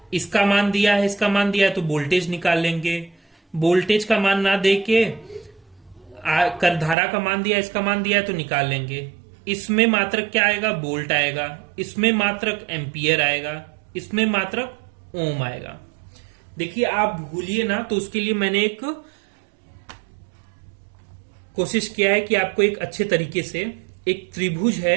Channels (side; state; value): left; drops out; at 7.0 s